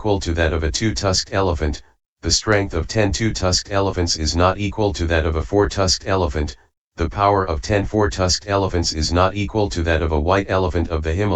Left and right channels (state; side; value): identical; both; correlation 1.00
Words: to that of a two-tusked elephant, the strength of 10 two-tusked elephants is not equal to that of a four-tusked elephant, the power of 10 four-tusked elephants is not equal to that of a white elephant of the